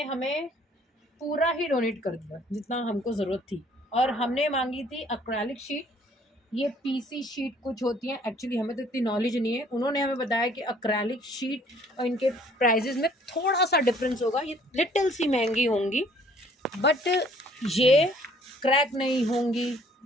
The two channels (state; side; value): normal; both; correlation 0.59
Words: हमें पूरा ही डोनेट कर दिया जितना हमको ज़रूरत थी। और हमने मांगी थी एक्रेलिक शीट। ये पीसी शीट कुछ होती हैं, एक्चुअली हमें तो इतनी नॉलेज नहीं है। उन्होंने हमें बताया कि एक्रेलिक शीट और इनके प्राइजेस में थोड़ा सा डिफरेंस होगा, ये लिटिल सी महंगी होंगी, बट ये क्रैक नहीं होंगी,